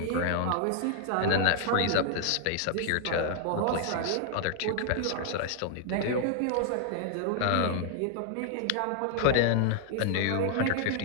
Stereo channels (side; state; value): both; different; correlation 0.00